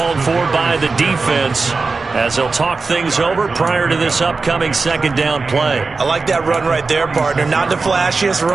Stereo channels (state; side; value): quieter; left; 4.1 dB